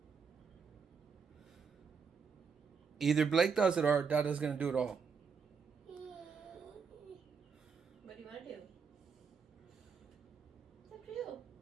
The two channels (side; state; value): left; quieter; 5.8 dB